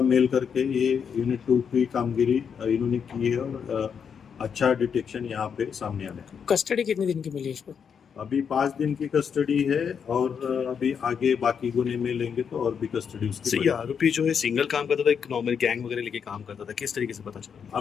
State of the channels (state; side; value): quieter; right; 7.0 dB